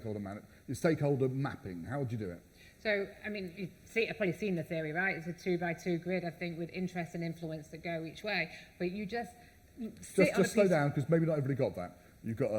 mapping? How would you do it? So, I mean, I've probably seen the theory, right? It's a 2x2 grid, I think, with interest and influence that go each way. But you just slow down, because maybe not everybody got that. You've got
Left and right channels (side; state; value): both; identical; correlation 1.00